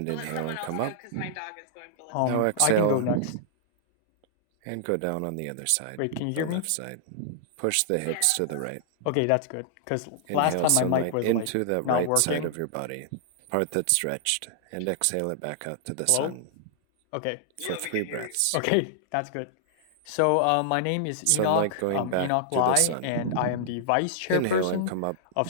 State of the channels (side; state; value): both; different; correlation -0.01